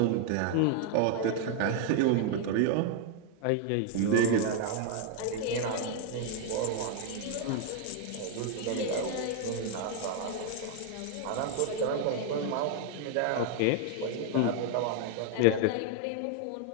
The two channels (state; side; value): different; both; correlation 0.00